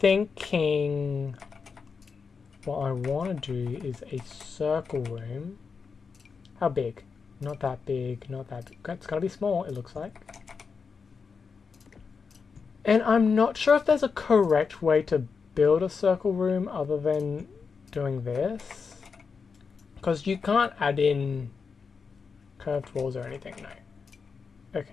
what I want to do is a circle room. How big? Not that big, not that big. It's going to be small, it looks like. And I'm not sure if there's a correct way to build a circle room other than doing this. Because you can't add in curved walls or anything, no.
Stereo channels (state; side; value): quieter; right; 5.4 dB